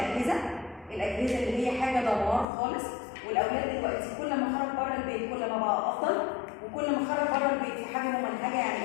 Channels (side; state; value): right; drops out; at 2.5 s